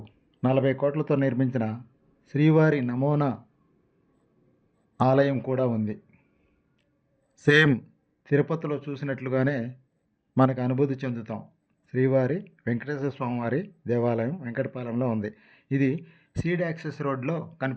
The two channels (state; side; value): identical; both; correlation 1.00